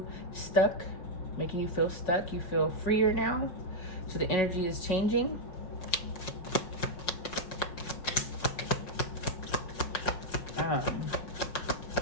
stuck, making you feel stuck. You feel freer now. So the energy is changing.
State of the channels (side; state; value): right; late; 5.5 ms